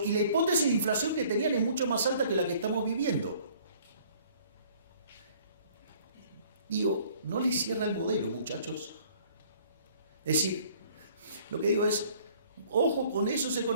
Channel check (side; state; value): both; inverted; correlation -0.56